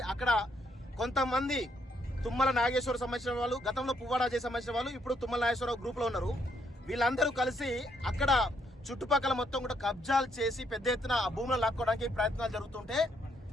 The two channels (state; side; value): normal; both; correlation 0.73